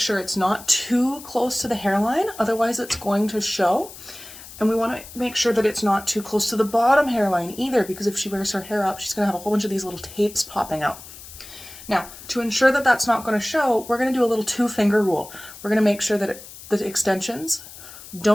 it's not too close to the hairline, otherwise it's going to show. And we want to make sure that it's not too close to the bottom hairline either, because if she wears her hair up, she's going to have a whole bunch of these little tapes popping out. Now, to ensure that that's not going to show, we're going to do a little two-finger rule. We're going to make sure that the extensions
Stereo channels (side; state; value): left; noise; hiss, 16 dB below the sound